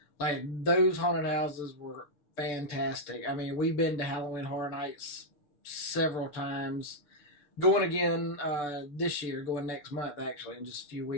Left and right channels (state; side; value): late; right; 6.8 ms